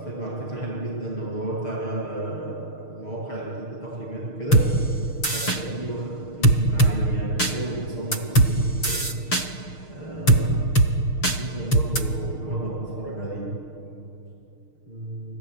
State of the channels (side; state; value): right; late; 6.5 ms